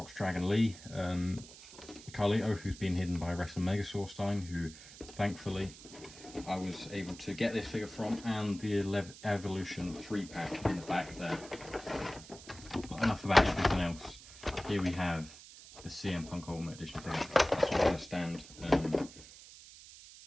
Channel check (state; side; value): noise; right; hiss, 17 dB below the sound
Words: Dragon Lee, Carlito, who's been hidden by Wrestling Megasaur Stein, who thankfully I was able to get this figure from, and the Evolution 3-pack in the back there. But enough about everything else. Here we have the CM Punk Ultimate Edition figure. That's where I'm going to stand.